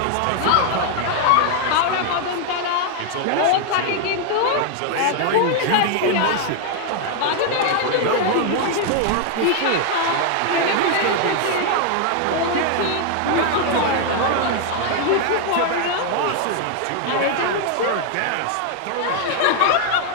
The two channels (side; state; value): both; different; correlation 0.00